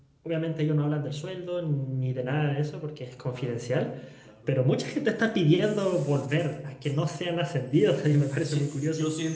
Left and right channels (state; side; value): identical; both; correlation 1.00